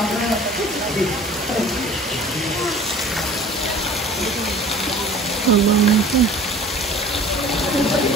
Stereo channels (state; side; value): normal; both; correlation 0.46